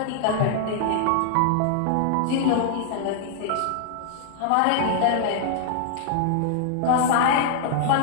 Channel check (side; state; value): both; different; correlation -0.01